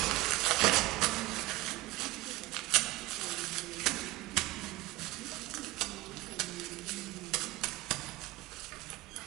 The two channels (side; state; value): left; quieter; 19.8 dB